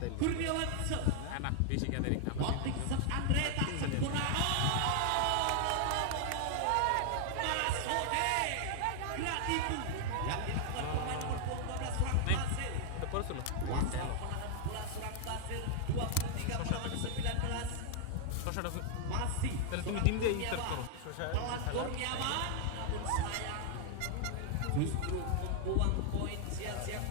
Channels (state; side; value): different; both; correlation 0.00